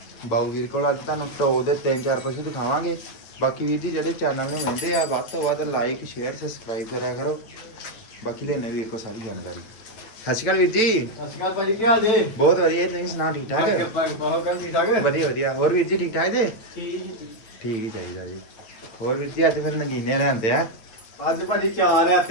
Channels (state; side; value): late; right; 9.0 ms